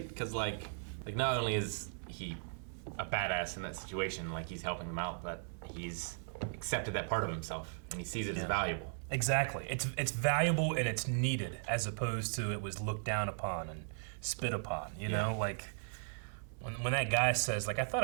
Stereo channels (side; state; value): left; silent; 53 dB below the other